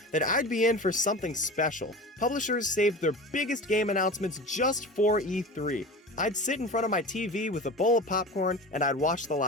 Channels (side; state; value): both; normal; correlation 0.32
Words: that I'd be in for something special. Publishers saved their biggest game announcements just for E3. I'd sit in front of my TV with a bowl of popcorn and I'd watch the